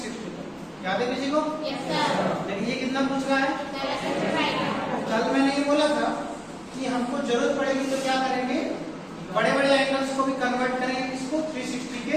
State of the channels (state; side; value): identical; both; correlation 1.00